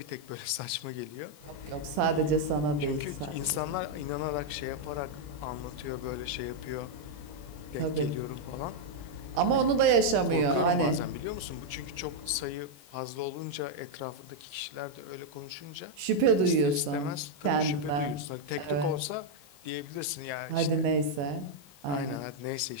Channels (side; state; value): left; late; 21 ms